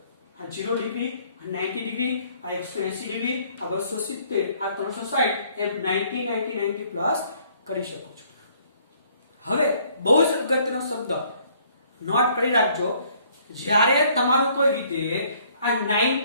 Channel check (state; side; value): inverted; both; correlation -0.62